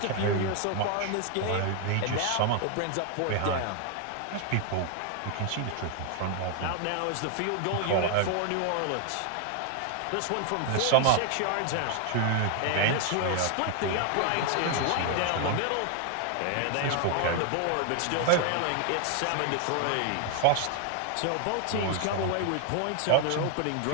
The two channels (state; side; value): different; both; correlation 0.00